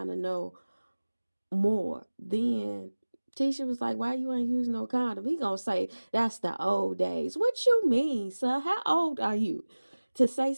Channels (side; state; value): both; inverted; correlation -1.00